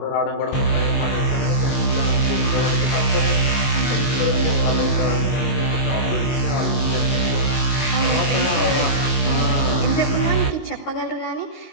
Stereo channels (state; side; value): late; right; 22 ms